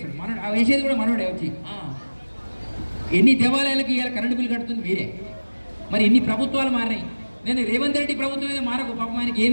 మనోడు వేసేది కూడా మనోడే వచ్చి. ఎన్ని దేవాలయాలకి ఇవాళ కరెంటు బిల్లు కడుతుంది మీరే. మరి ఇన్ని ప్రభుత్వాలు మారినాయి. నేను రేవంత్ రెడ్డి ప్రభుత్వం మీద మారకు పాపం, ఆయనకి ఏం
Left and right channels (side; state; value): both; inverted; correlation -1.00